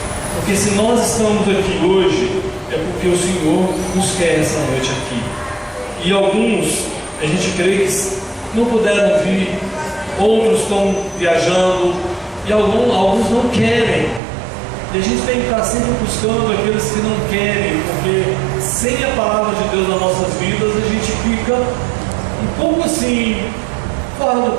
Porque se nós estamos aqui hoje, é porque o Senhor nos quer essa noite aqui. E alguns, a gente crê que não puderam vir, outros estão viajando, e alguns não querem. E a gente tem que estar sempre buscando aqueles que não querem, porque sem a palavra de Deus nas nossas vidas, a gente fica um pouco assim, fora do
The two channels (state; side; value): drops out; left; at 14.2 s